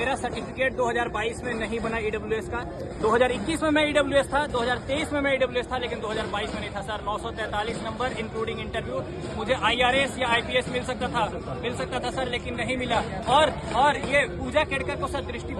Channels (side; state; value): both; identical; correlation 1.00